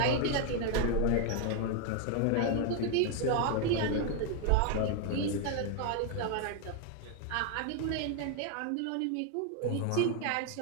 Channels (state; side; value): different; both; correlation 0.01